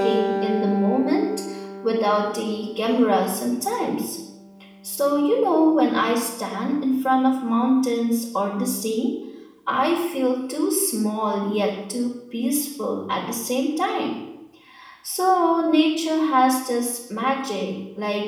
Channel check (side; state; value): both; identical; correlation 1.00